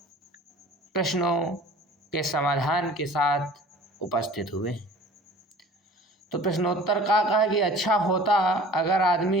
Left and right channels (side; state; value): both; normal; correlation 0.45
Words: प्रश्नों के समाधान के साथ उपस्थित हुए। तो प्रश्नोत्तर का है कि अच्छा होता अगर